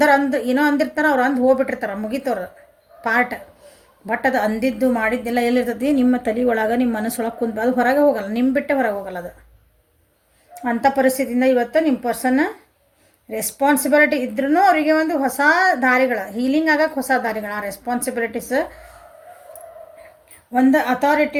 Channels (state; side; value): identical; both; correlation 1.00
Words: ಏನೋ ಅಂದಿರ್ತಾರೆ, ಅವ್ರು ಅಂದು ಹೋಗ್ಬಿಟ್ಟಿರ್ತಾರೆ, ಮುಗಿತವ್ರು ಪಾರ್ಟ್. ಬಟ್ ಅದು ಅಂದಿದ್ದು ಮಾಡಿದ್ದೆಲ್ಲ ಎಲ್ಲಿರ್ತೈತಿ, ನಿಮ್ಮ ತಲೆ ಒಳಗೆ, ನಿಮ್ಮ ಮನಸ್ಸೊಳಗೆ ಕುಂತು ಅದು ಹೊರಗೆ ಹೋಗಲ್ಲ, ನಿಮ್ಮ ಬಿಟ್ಟೆ ಹೊರಗೆ ಹೋಗಲ್ಲ ಅದು. ಅಂಥ ಪರಿಸ್ಥಿತಿಯಿಂದ ಇವತ್ತು ನಿಮ್ಮ ಪರ್ಸನ್ ರೆಸ್ಪಾನ್ಸಿಬಿಲಿಟಿ ಇದ್ರೂ ಅವರಿಗೆ ಒಂದು ಹೊಸ ದಾರಿಗಳು, ಹೀಲಿಂಗ್ ಆಗಕ್ಕೆ ಹೊಸ ದಾರಿಗಳು, ಆ ರೆಸ್ಪಾನ್ಸಿಬಿಲಿಟೀಸ್ ಒಂದು